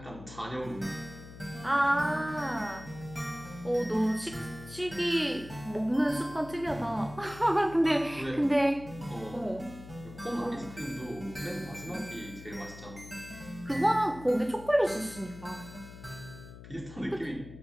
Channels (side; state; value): left; noise; hum, 15 dB below the sound